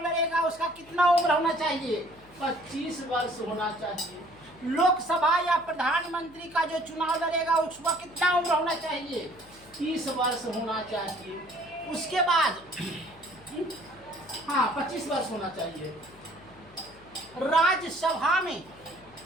लड़ेगा उसका कितना उम्र होना चाहिए? 25 वर्ष होना चाहिए। लोकसभा या प्रधानमंत्री का जो चुनाव लड़ेगा उसका कितना उम्र होना चाहिए? 30 वर्ष होना चाहिए। उसके बाद 25 वर्ष होना चाहिए। राज्यसभा में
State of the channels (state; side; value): noise; left; hum, 25 dB below the sound